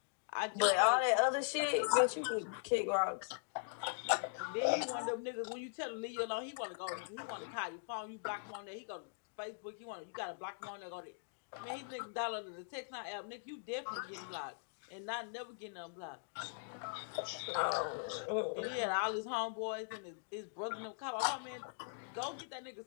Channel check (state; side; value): silent; right; digital silence